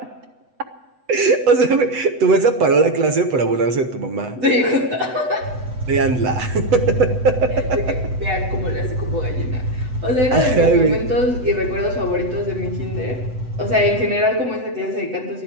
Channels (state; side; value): late; left; 8.0 ms